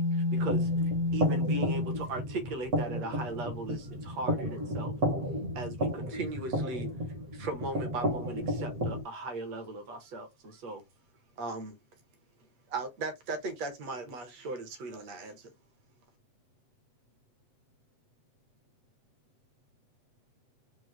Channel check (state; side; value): late; left; 8.3 ms